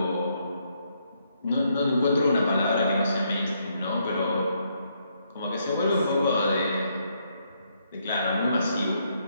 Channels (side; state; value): both; inverted; correlation -0.75